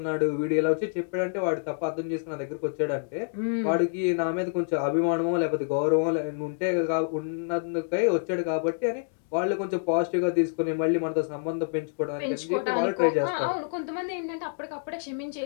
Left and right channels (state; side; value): silent; right; digital silence